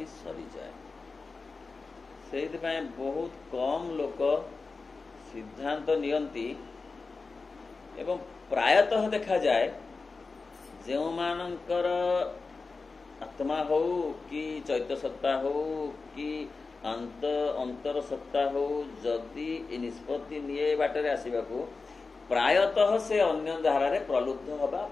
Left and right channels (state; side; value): quieter; right; 4.1 dB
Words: सरी जाए। से बहुत कम लोक सिद्धांत नियंती एवं प्रायतः देखा जाए जो मानकर आत्मा हो कि चैत्य सत्ता हो कि अंतर सत्ता हो जदि निष्पत्ति निये बाटरे आसीबाकू प्रायतः से अन्य धारा रे प्रलुब्ध हवा